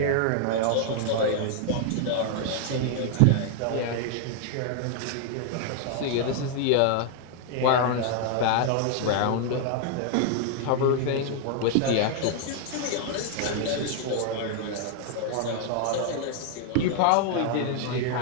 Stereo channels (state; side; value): different; both; correlation 0.00